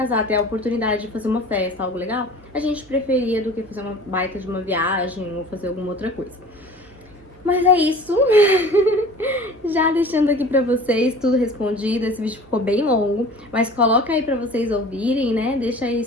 ter a oportunidade de fazer uma festa, algo legal, a gente preferia do que fazer uma baita de uma viagem ou fazer alguma outra coisa. Mas é isso. Já deixando aqui pra vocês tudo respondido. Esse vídeo ficou bem longo, mas coloca aí pra vocês ouvirem, né? Deixa aí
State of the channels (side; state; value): right; noise; hum, 28 dB below the sound